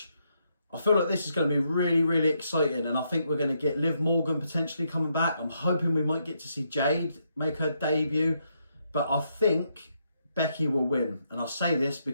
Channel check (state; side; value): inverted; both; correlation -0.77